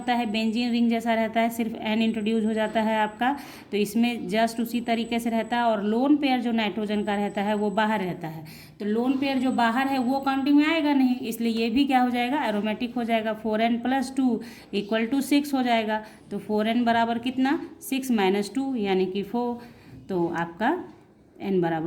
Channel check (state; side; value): identical; both; correlation 1.00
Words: है, बेंजीन रिंग जैसा रहता है, सिर्फ n इंट्रोड्यूस हो जाता है आपका, तो इसमें जस्ट उसी तरीके से रहता है। और लोन पेयर जो नाइट्रोजन का रहता है वो बाहर रहता है, तो लोन पेयर जो बाहर है वो काउंटिंग में आएगा नहीं, इसलिए ये भी क्या हो जाएगा, एरोमेटिक हो जाएगा। 4n+2 इक्वल टू 6 हो जाएगा, तो 4n बराबर कितना, 6 - 2 यानी कि 4, तो आपका n